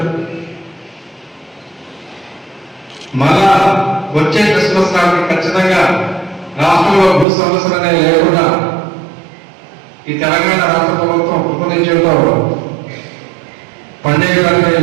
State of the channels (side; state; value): left; drops out; at 7.2 s